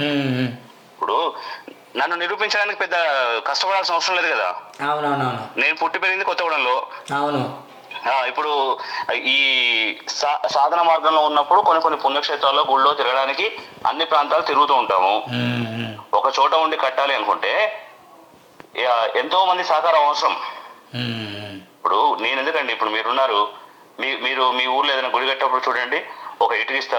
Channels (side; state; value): both; identical; correlation 1.00